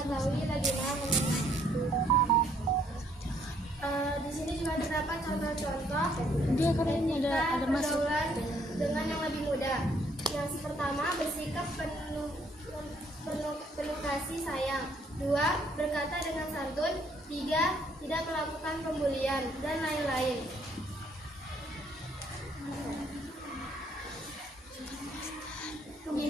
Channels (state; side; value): normal; both; correlation 0.67